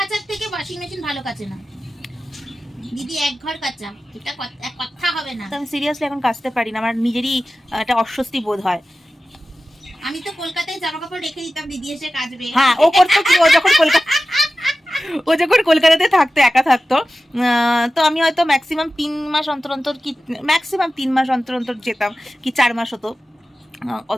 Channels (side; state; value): both; normal; correlation 0.95